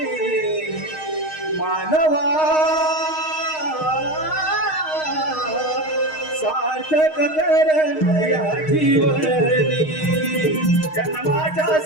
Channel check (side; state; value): right; late; 6.4 ms